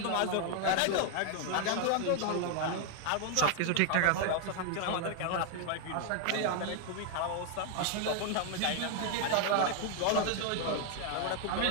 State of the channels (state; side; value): different; both; correlation 0.00